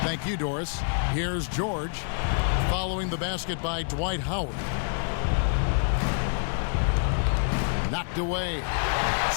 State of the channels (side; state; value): right; silent; 60 dB below the other